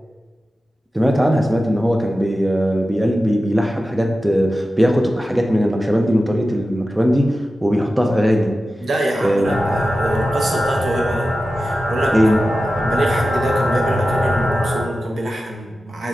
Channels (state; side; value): normal; both; correlation 0.93